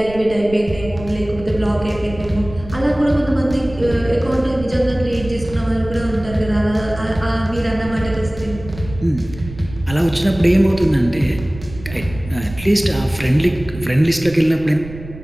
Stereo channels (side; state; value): right; noise; rumble, 14 dB below the sound